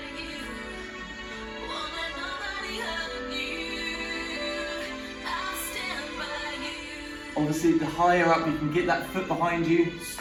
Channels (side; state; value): both; identical; correlation 1.00